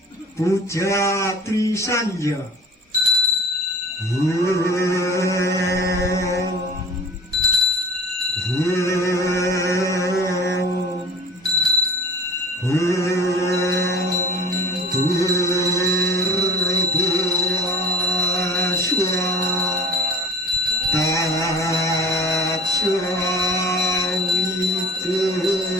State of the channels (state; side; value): normal; both; correlation 0.44